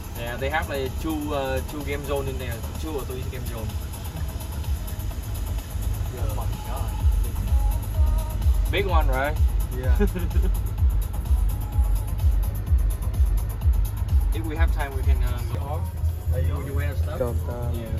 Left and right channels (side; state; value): both; identical; correlation 1.00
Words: Yeah, they have like two game zone in there, 2 or 3 game zone. Oh my god. Big one, right? Yeah. If we have time, we can go off. Would you wear stuff? Yeah.